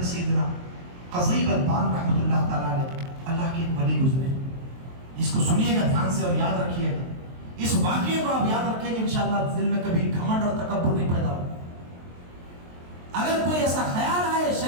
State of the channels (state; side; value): late; left; 23 ms